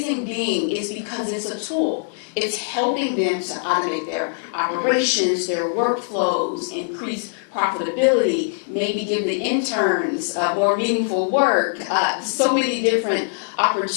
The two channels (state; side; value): silent; right; digital silence